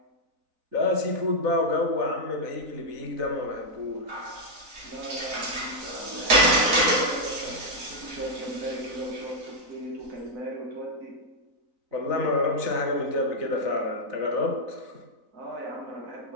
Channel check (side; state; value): left; late; 4.0 ms